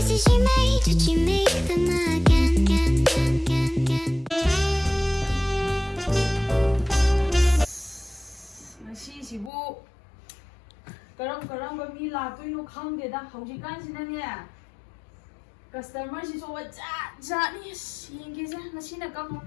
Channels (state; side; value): drops out; right; at 9.5 s